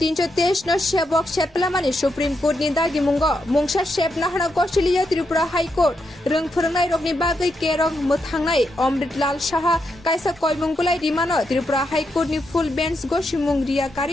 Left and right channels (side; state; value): both; normal; correlation 0.82